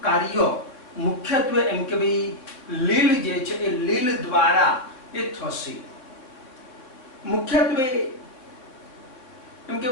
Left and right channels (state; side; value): late; right; 3.7 ms